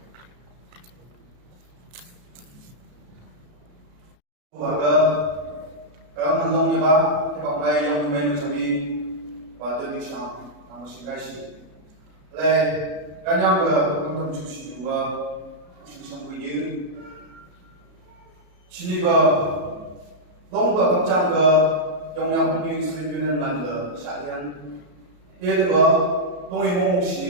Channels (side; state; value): left; late; 33 ms